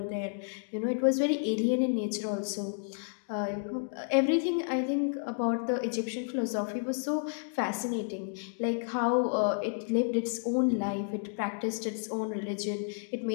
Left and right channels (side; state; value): right; silent; digital silence